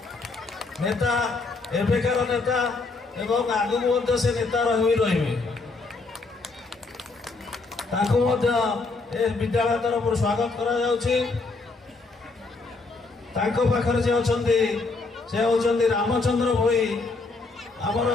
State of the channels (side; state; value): right; quieter; 3.8 dB